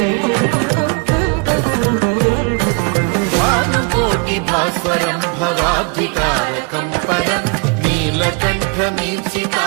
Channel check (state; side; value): quieter; left; 33.2 dB